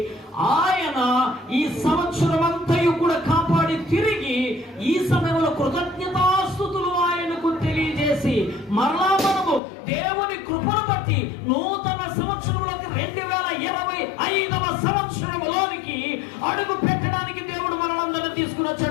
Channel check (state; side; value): drops out; right; at 9.6 s